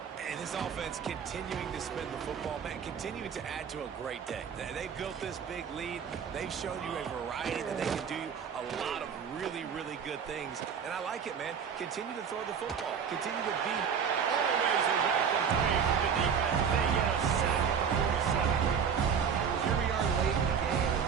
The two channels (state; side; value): quieter; left; 7.0 dB